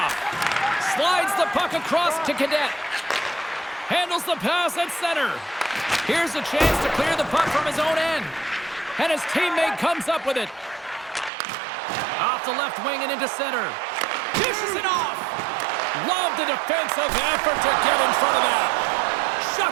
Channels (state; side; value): drops out; left; at 11.3 s